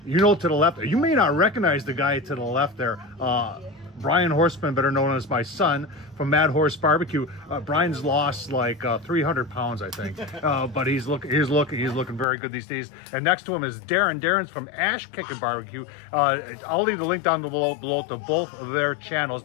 you know, to the left, you may not recognize the guy to the left there. Brian Horsman, better known as my son, from MadHorse BBQ. Brian's lost like 300 pounds, I think, but he's looking very good these days. And next to him is Darrin. Darrin's from Kickin BBQ. I'll leave the link down below to both of their channels.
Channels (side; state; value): right; drops out; at 12.2 s